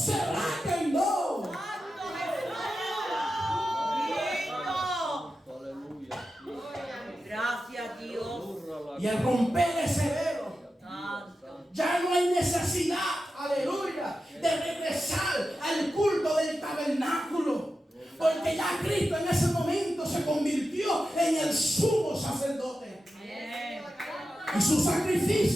rasga en dos. Gracias, Dios. Y al romper ese velo, ya no hay necesidad, aleluya, de regresar al culto del tabernáculo. Porque ya Cristo en ese momento se convirtió en el sumo sacerdote. Y su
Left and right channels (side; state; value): both; normal; correlation 0.91